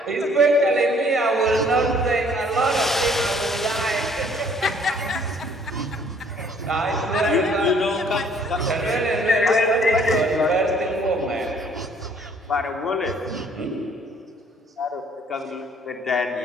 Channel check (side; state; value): both; normal; correlation 0.60